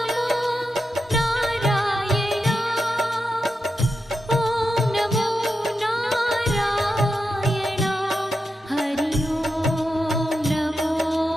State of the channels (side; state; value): both; normal; correlation 0.88